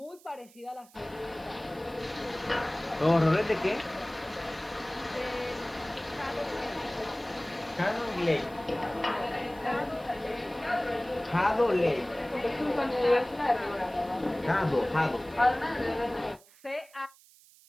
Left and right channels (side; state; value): right; noise; hiss, 26 dB below the sound